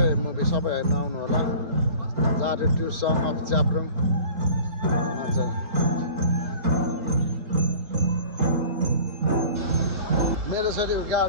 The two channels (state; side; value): late; left; 4.2 ms